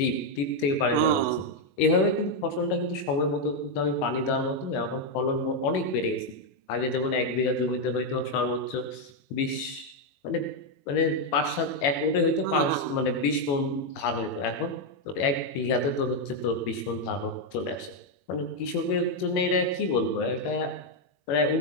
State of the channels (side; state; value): right; late; 21 ms